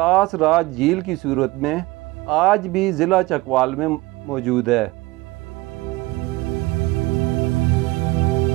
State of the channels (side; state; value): left; quieter; 20.9 dB